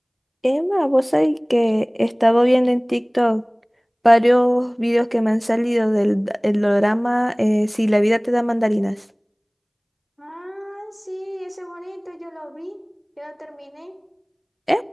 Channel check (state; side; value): identical; both; correlation 1.00